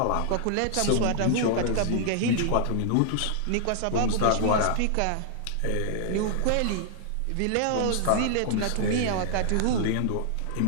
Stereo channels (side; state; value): both; different; correlation -0.01